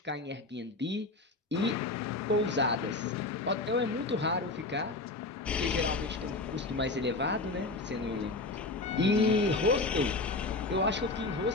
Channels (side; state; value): right; quieter; 3.2 dB